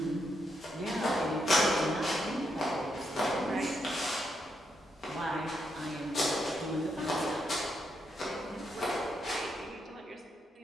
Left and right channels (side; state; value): both; normal; correlation 0.80